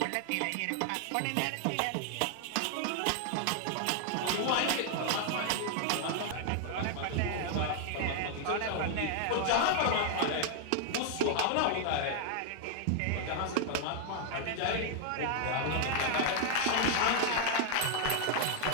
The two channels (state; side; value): different; both; correlation 0.00